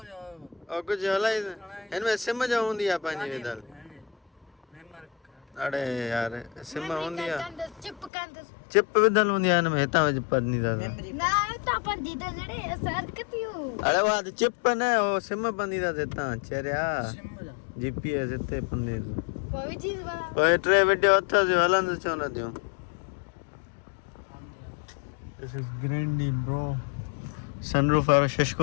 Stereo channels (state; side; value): drops out; right; at 8.1 s